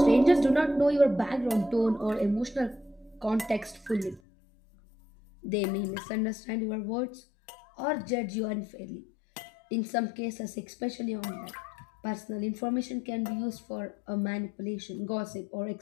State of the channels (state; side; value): drops out; right; at 4.2 s